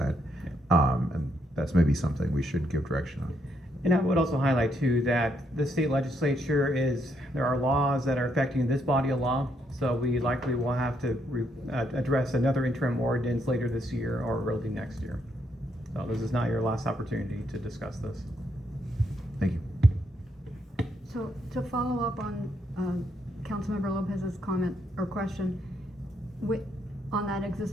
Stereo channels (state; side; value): normal; both; correlation 0.75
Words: And that's maybe something we should give direction on. And I would also highlight too that the state legislature there are laws that are affecting this body of law. So we likely will have to address another interim ordinance later this year or early next year. So this is not your last opportunity to discuss this. Thank you. So to follow up on Councilmember Lopez's comment or question on that